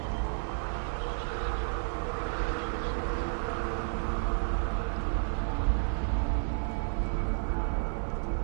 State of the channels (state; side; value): silent; left; 57 dB below the other